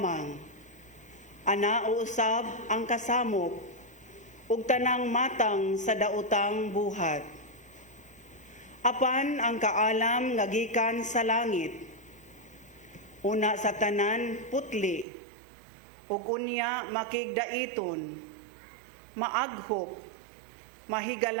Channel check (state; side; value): drops out; left; at 15.1 s